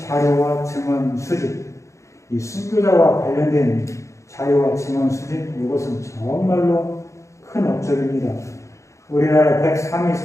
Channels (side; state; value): right; late; 0.15 ms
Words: 증언 수집. 이 순교자와 관련된 자료와 증언 수집, 이것은 정말로 큰 업적입니다. 우리나라 103위